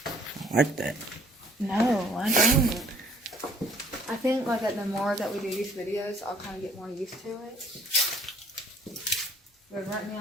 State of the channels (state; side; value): normal; both; correlation 0.58